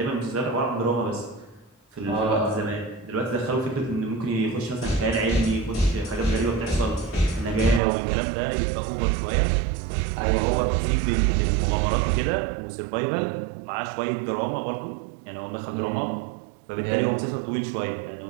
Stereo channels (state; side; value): drops out; left; at 7.8 s